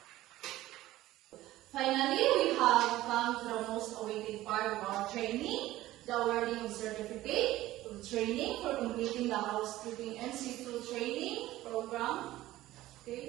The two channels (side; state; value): left; quieter; 15.9 dB